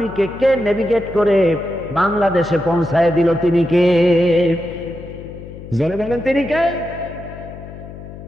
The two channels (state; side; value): noise; left; hum, 14 dB below the sound